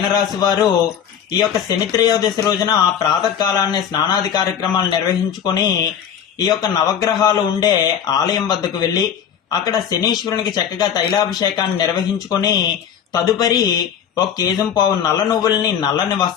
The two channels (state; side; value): quieter; right; 8.7 dB